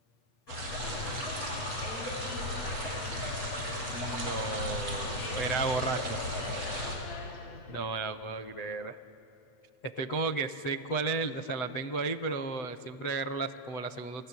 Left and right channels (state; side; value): late; right; 8.0 ms